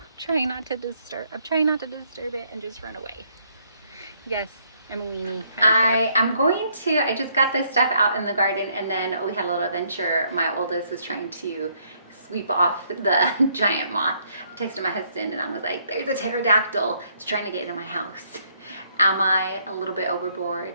trying not to disturb. I'm trying not to disturb it and just run away. Yes, I'm a weenie. I just got this stuff out in the garden, and then we had a little adventure. My oldest was trying to sweep off the giant moth. I texted my husband and I was like, there's a pterodactyl. It's trying to get into my house. Am I a little bit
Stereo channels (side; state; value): both; inverted; correlation -0.69